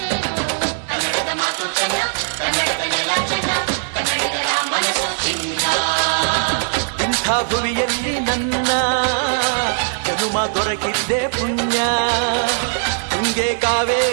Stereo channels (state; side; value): silent; left; digital silence